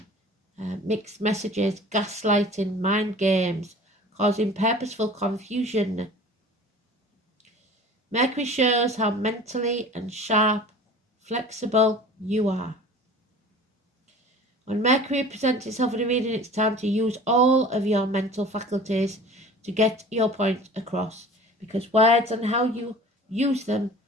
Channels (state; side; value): normal; both; correlation 0.43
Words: mixed messages, gaslighting, mind games, causing purposeful confusion. Mercury shows how mentally and sharp, flexible you are. When Mercury presents itself in a reading, it's time to use all of your mental faculties to get your point across, because words and how you use them